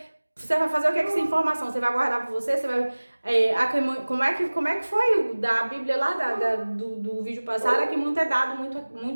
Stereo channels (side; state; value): both; inverted; correlation -1.00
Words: fazer o que com essa informação? Você vai guardar pra você? Você vai... como é que foi o da Bíblia lá, do vídeo passado? É que muito é dado,